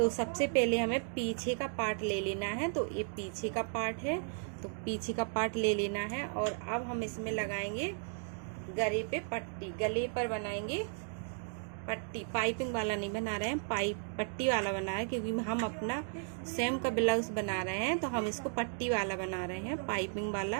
सबसे पहले हमें पीछे का पार्ट ले लेना है। तो ये पीछे का पार्ट है, तो पीछे का पार्ट ले लेना है। और अब हम इसमें लगाएंगे गले पे पट्टी, गले पर बनाएंगे पट्टी। पाइपिंग वाला नहीं बना रहे हैं, पट्टी वाला बना रहे हैं, क्योंकि हम अपना सेम का ब्लाउज बना रहे हैं। तो हम इसको पट्टी वाला बना रहे हैं, पाइपिंग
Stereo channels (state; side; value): silent; left; 55 dB below the other